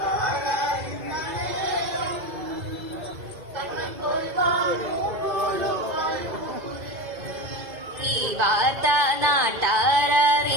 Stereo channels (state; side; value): late; left; 2.5 ms